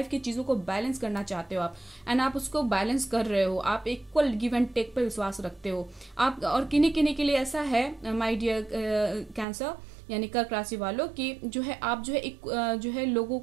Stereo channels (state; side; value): drops out; left; at 9.5 s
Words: की चीज़ों को बैलेंस करना चाहते हो आप, एंड आप उसको बैलेंस कर रहे हो। आप इक्वल गिव एंड टेक पर विश्वास रखते हो आप। और किन्हीं किन्हीं के लिए ऐसा है माय डियर कैंसर यानी कर्क राशि वालों की जो है आप जो है एक जो है लोगों